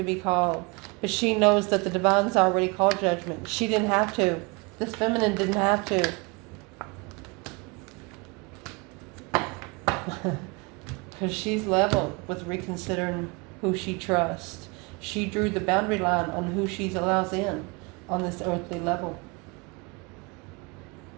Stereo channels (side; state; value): left; quieter; 28.4 dB